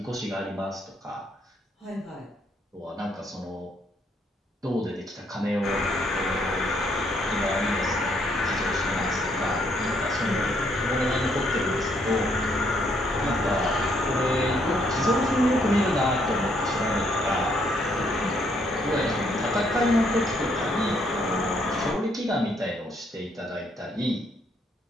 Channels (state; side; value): normal; both; correlation 0.70